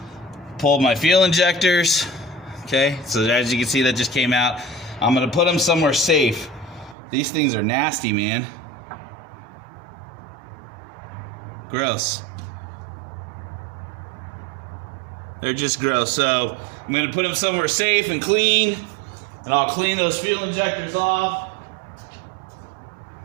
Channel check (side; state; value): left; drops out; at 7.0 s